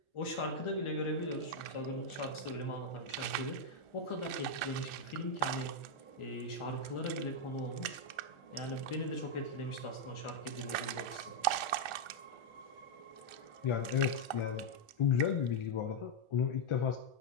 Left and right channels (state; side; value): late; right; 1.4 ms